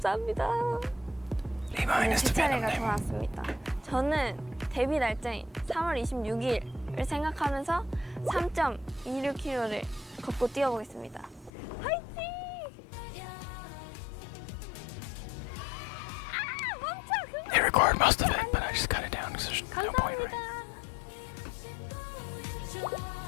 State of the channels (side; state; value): right; drops out; at 11.5 s